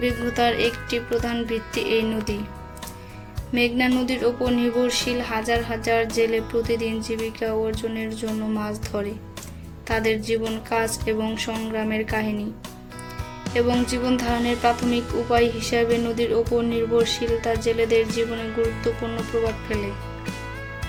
একটি প্রধান ভিত্তি এই নদী। মেঘনা নদীর ওপর নির্ভরশীল হাজার হাজার জেলে প্রতিদিন জীবিকা অর্জনের জন্য মাছ ধরে। তাদের জীবন, কাজ এবং সংগ্রামের কাহিনী এবং জীবন ধারণের প্রাথমিক উপায় হিসাবে নদীর ওপর নির্ভরশীলতা জেলেদের জীবনে গুরুত্বপূর্ণ প্রভাব ফেলে।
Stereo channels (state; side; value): identical; both; correlation 1.00